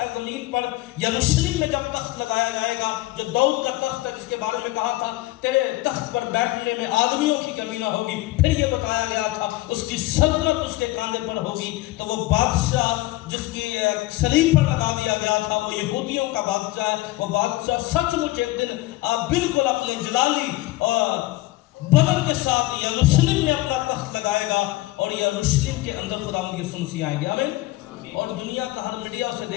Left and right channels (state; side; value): quieter; right; 18.5 dB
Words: زمین پر، یروشلم میں جب تخت لگایا جائے گا، جو داؤد کا تخت ہے جس کے بارے میں کہا تھا تیرے تخت پر بیٹھنے میں آدمیوں کی کمی نہ ہوگی، پھر یہ بتایا گیا تھا اس کی سلطنت اس کے کاندھے پر ہوگی۔ تو وہ بادشاہ جس کی صلیب پر لگا دیا گیا تھا، وہ یہودیوں کا بادشاہ ہے۔ وہ بادشاہ سچ مچ ایک دن بالکل اپنے جلالی اور بدن کے ساتھ یروشلم میں اپنا تخت لگائے گا، اور یروشلم کے اندر خداوند یسوع مسیح آئیں گے۔ آمین۔ اور دنیا کا ہر میڈیا اسے